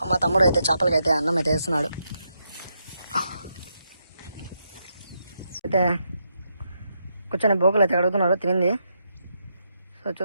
మా తమ్ముడు అయితే చేపలకి అయితే అన్నం అయితే వేస్తున్నాడు. అయితే కూర్చొని బోకులు అయితే అడుగుతున్నారు తినింది. సో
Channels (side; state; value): both; inverted; correlation -0.81